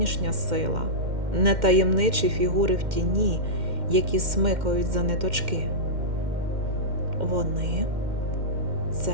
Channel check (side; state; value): left; late; 2.1 ms